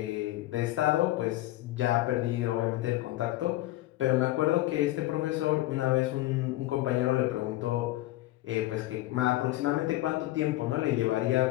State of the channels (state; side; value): quieter; right; 16.7 dB